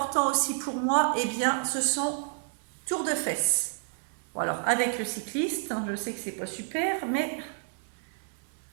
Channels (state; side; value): silent; left; 58 dB below the other